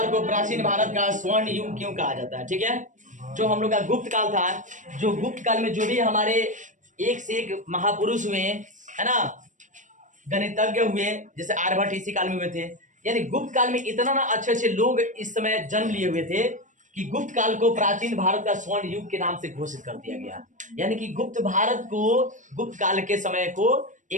को प्राचीन भारत का स्वर्ण युग क्यों कहा जाता है। ठीक है, जो हम लोग का गुप्त काल था, जो गुप्त काल में जो भी हमारे एक से एक महापुरुष हुए है ना, गणितज्ञ हुए, जैसे आर्यभट्ट इसी काल में हुए थे। यानी गुप्त काल में इतना ना अच्छे अच्छे लोग इस समय जन्म लिए हुए थे कि गुप्त काल को प्राचीन भारत का स्वर्ण युग के नाम से घोषित कर दिया गया। यानी कि गुप्त भारत को, गुप्त काल के समय को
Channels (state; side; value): late; left; 0.37 ms